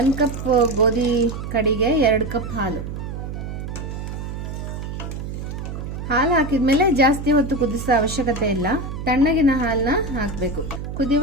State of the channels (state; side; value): noise; right; hum, 7 dB below the sound